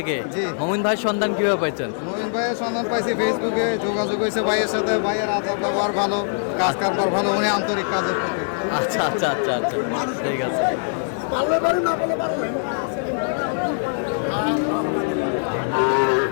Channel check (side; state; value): right; silent; digital silence